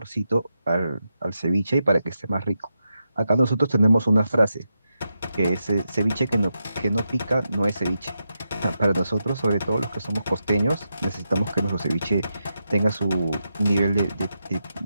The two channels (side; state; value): both; inverted; correlation -0.87